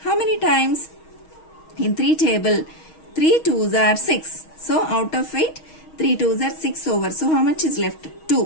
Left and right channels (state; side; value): late; right; 6.3 ms